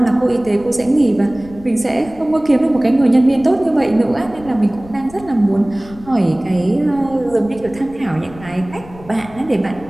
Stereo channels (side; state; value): left; noise; rumble, 19 dB below the sound